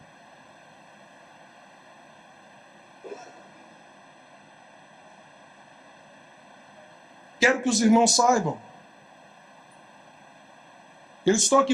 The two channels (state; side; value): identical; both; correlation 1.00